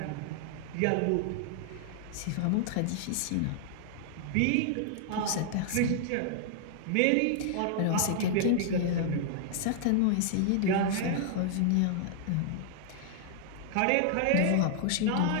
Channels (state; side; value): different; both; correlation -0.01